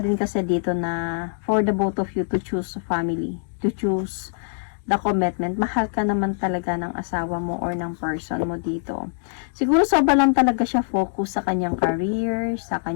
din kasi dito na for the both of you to choose a family. To choose the commitment. Mahal ka naman talaga ng asawa mo or ng person mo dito. Siguro sobra lang talaga siya focus sa kanyang career, sa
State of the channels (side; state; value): right; silent; digital silence